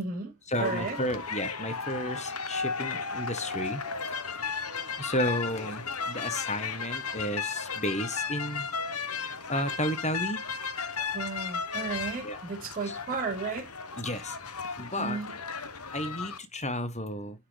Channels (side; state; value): both; normal; correlation 0.11